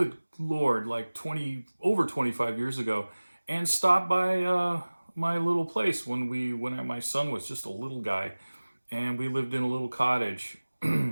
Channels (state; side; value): inverted; both; correlation -1.00